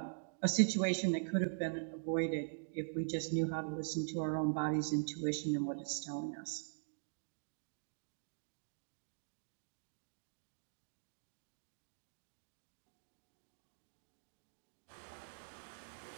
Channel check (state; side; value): silent; left; digital silence